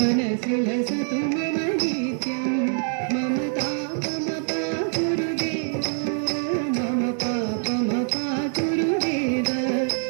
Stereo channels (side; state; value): left; silent; digital silence